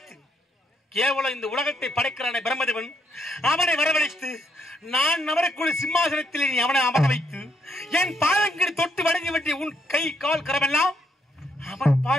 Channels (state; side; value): normal; both; correlation 0.74